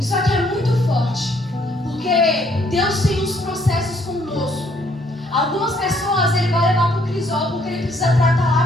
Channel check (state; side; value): normal; both; correlation 0.66